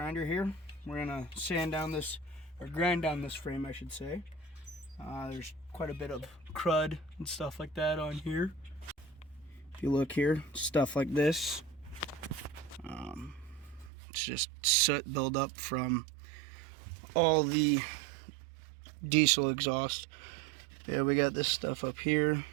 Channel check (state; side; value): drops out; left; at 13.9 s